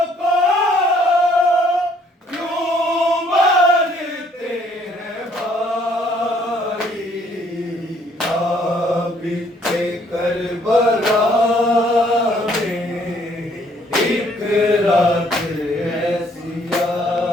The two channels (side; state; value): both; normal; correlation 0.64